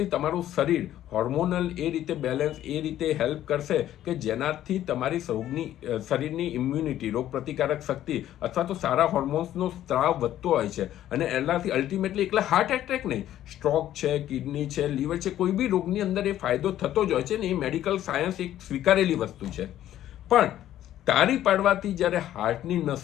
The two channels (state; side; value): quieter; right; 12.4 dB